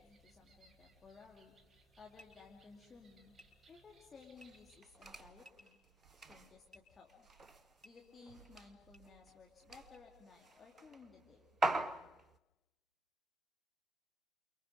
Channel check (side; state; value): both; normal; correlation 0.85